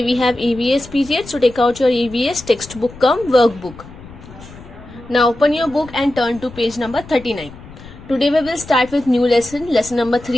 we have EVS period, so take out your EVS textbook cum workbook. Now open your book and turn to page number 39. Today we will start with new lesson number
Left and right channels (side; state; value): left; noise; rumble, 18 dB below the sound